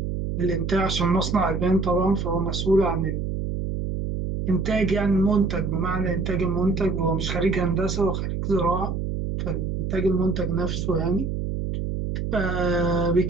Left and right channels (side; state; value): right; noise; hum, 2 dB below the sound